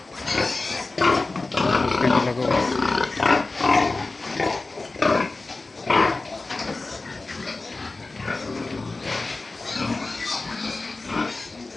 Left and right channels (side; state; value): right; quieter; 3.4 dB